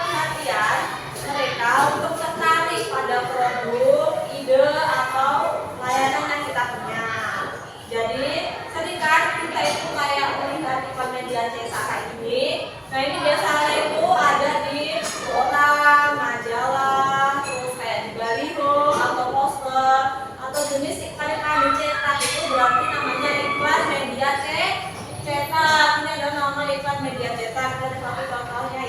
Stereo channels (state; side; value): identical; both; correlation 1.00